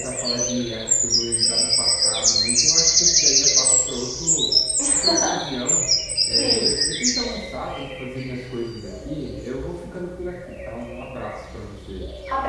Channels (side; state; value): both; identical; correlation 1.00